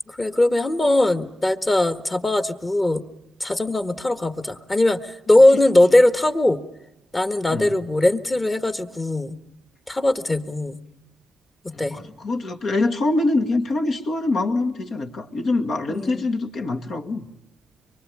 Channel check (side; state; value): both; normal; correlation 0.96